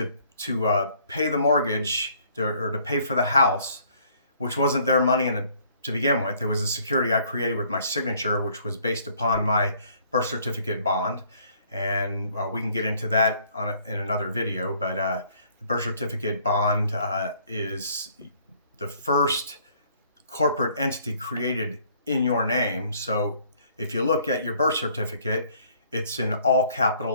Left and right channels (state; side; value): inverted; both; correlation -0.61